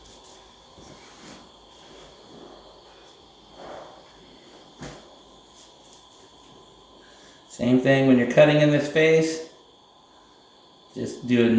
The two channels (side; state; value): both; identical; correlation 1.00